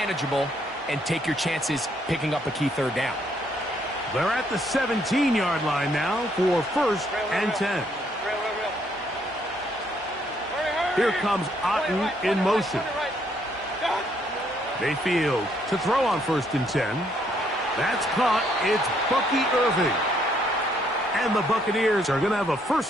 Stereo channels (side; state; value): both; normal; correlation 0.70